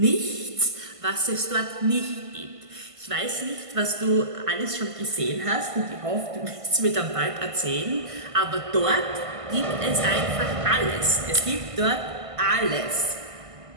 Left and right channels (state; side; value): late; left; 1.5 ms